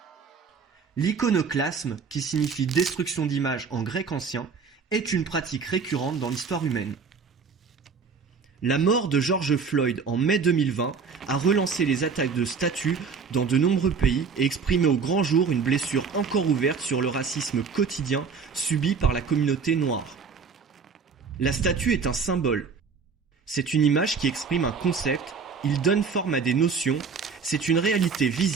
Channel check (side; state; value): left; quieter; 5.5 dB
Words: L'iconoclasme, qui signifie destruction d'images en grec ancien, est une pratique récurrente dans l'histoire humaine. La mort de George Floyd en mai 2020 a relancé les attaques de statues dans de nombreux pays et exprimé au grand jour une blessure encore ouverte sur le racisme quotidien subi par la communauté noire. La statue est un symbole. C'est une image qui exprime un concept, il donne forme à des notions, c'est une réalité